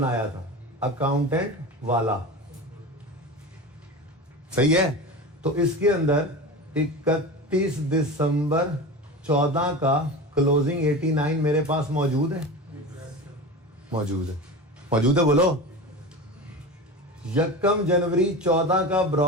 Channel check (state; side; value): normal; both; correlation 0.29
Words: था, अकाउंटेंट वाला, सही है। तो इसके अंदर 31 दिसंबर 14 का क्लोजिंग 89 मेरे पास मौजूद है। बोलो। 1 जनवरी 14 का